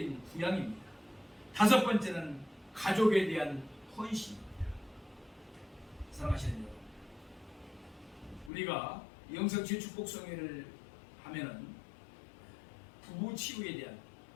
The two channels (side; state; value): right; drops out; at 8.5 s